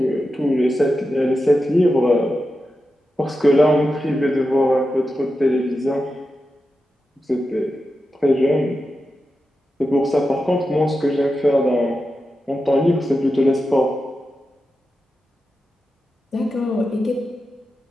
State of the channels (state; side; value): normal; both; correlation 0.90